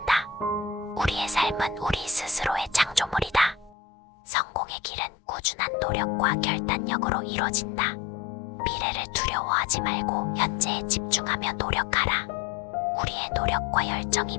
우리의 삶은 우리 스스로의 창조물이다. 성공의 길은 꾸준한 노력과 결단력으로 이뤄진다. 미래를 두려워하지 말고 현재에 집중하며 노력하라. 우리의 노력과 열정이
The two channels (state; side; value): drops out; right; at 3.8 s